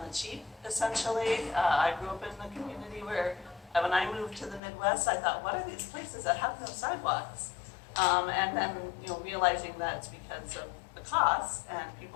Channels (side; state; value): right; drops out; at 4.6 s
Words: the cheap, essentially. I grew up in a community where, when I moved to the Midwest, I thought, what are these places that have no sidewalks? And then, realizing that it's because of the cost and